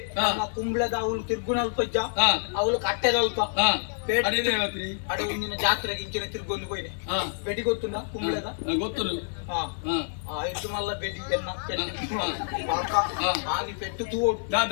ಕುಂಬ್ಳದ ಅವಳು ತಿರ್ಗುಣ ಅಲ್ಪ ಅವಳು ಕಟ್ಟೆದ ಅಲ್ಪ ಅಡೆ ಮುಂದಿನ ಜಾತ್ರೆಗೆ ಇಂಚಿನ ತಿರ್ಗೊಂಡು ಹೋಯ್ನೆ ಬೆಡಿ ಗೊತ್ತುಂಡ ಕುಂಬ್ಳದ ಗೊತ್ತು ಐದು ಮಲ್ಲ ಬೆಡಿ ಎನ್ನ ಆಗಿ ಪೆಟ್ಟು ತೂಡು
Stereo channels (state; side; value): silent; right; digital silence